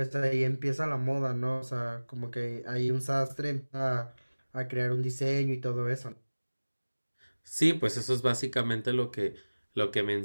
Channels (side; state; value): both; inverted; correlation -1.00